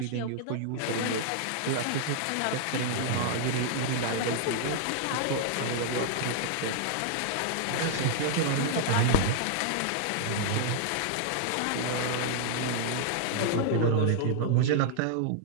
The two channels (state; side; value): different; both; correlation -0.01